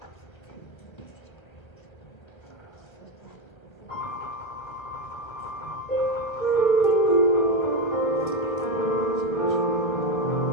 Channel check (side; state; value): right; late; 1.5 ms